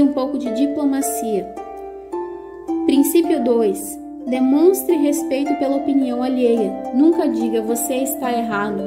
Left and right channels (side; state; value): both; identical; correlation 1.00